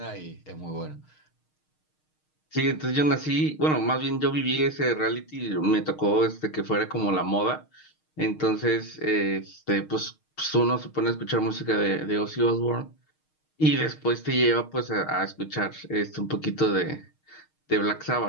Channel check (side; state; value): right; late; 6.5 ms